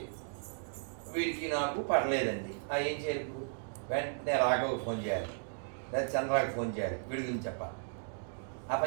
వీడికి నాకు పడలేదండి, ఏం చేయాలి? వెంటనే రాఘవకు ఫోన్ చేయాలి, లేదా చంద్రాకి ఫోన్ చేయాలి, వీడి గురించి చెప్పాలి. ఆ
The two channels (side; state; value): left; silent; digital silence